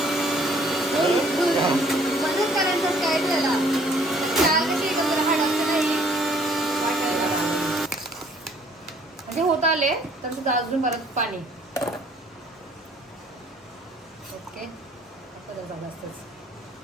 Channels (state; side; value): normal; both; correlation 0.60